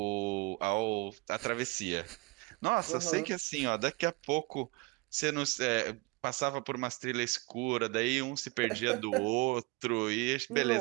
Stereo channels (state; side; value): quieter; left; 26.7 dB